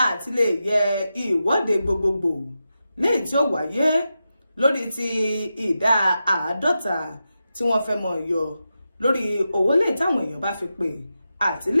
àti lè yẹ ìwọ́de gbogbogbò léyìí tí ó wáyé lórí ti ìdá 50 tí wọ́n fẹ́ mọ̀ yọ lórí owó lè táwọn èèyàn bá fi pè àti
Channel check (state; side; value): inverted; both; correlation -0.90